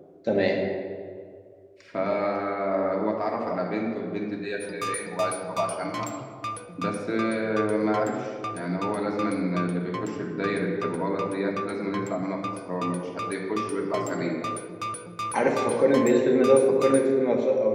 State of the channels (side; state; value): both; identical; correlation 1.00